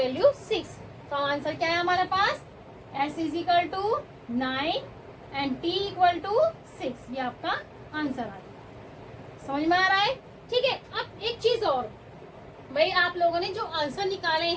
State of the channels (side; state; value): both; identical; correlation 1.00